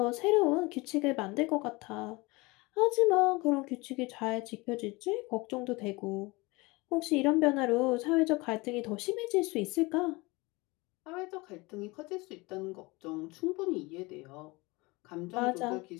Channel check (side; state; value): right; quieter; 24.0 dB